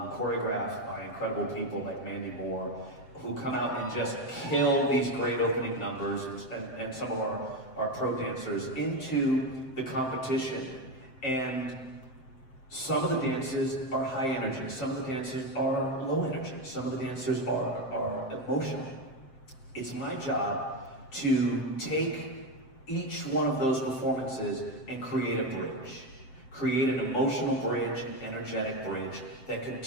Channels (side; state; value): right; late; 7.6 ms